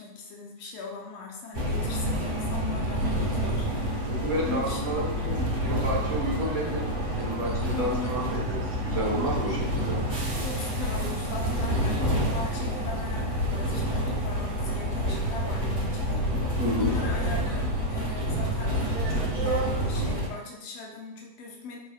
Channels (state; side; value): late; right; 8.0 ms